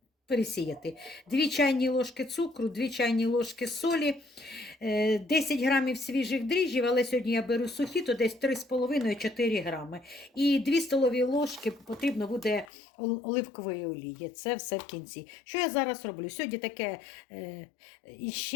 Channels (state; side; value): drops out; right; at 12.7 s